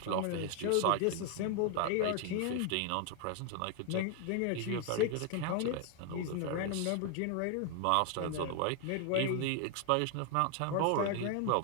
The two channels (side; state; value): both; different; correlation 0.01